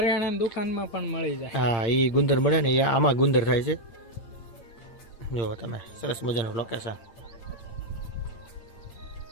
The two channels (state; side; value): late; right; 8.8 ms